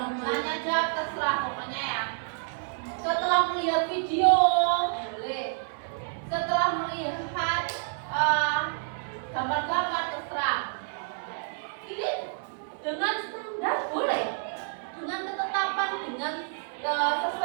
tanya jawab, terserah pokoknya ya. Setelah melihat video, boleh. Setelah melihat gambar-gambar, terserah. Ini dengan standar boleh, dengan ketetapan, dengan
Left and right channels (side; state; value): left; silent; 59 dB below the other